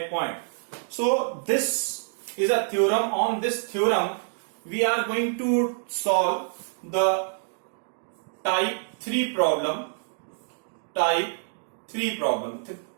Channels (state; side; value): silent; left; digital silence